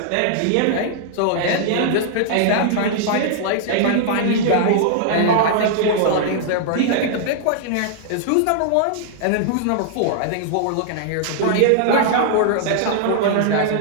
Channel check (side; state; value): both; different; correlation -0.01